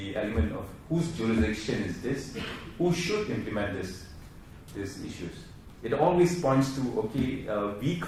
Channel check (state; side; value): identical; both; correlation 1.00